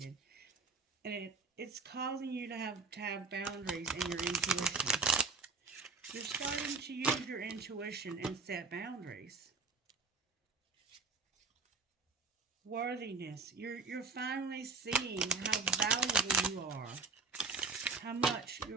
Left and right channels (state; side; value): quieter; left; 4.3 dB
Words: and it's causing you to have boundaries in your intuition. You're starting to use your intuition and set boundaries. Worthiness. You're finally seeing how valuable you are, how much